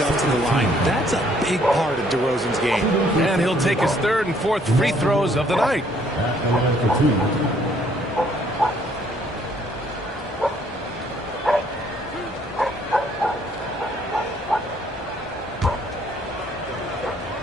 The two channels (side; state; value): both; normal; correlation 0.64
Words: to the line. That's a big part of DeRozan's game. And he'll take his third and fourth free throws of the night.